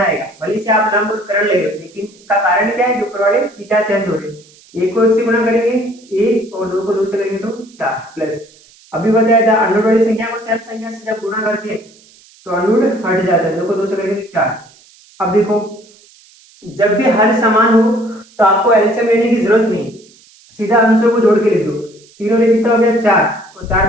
भले से आप लंब और करण ले रहे हो, लेकिन इसका कारण क्या है, जो ऊपर वाले थीटा चेंज हो रहे हैं। एक को एक से गुणा करेंगे 1 और 2 को 2 से करेंगे तो 4 प्लस, अभी बताया था अंडर वाली संख्या को सेम संख्या से जब गुणा करते हैं तो अंडर हट जाता है, 2 को 2 से करेंगे तो 4। अब देखो जब भी हर समान हो तो आपको एलसीएम लेने की जरूरत नहीं, सीधा अंशों को जोड़ के लिख दो, तीनों में कितना हो गया 4 और 4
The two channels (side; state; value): right; noise; hiss, 27 dB below the sound